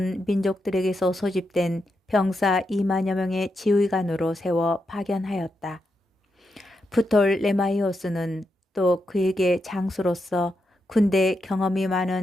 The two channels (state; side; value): normal; both; correlation 0.85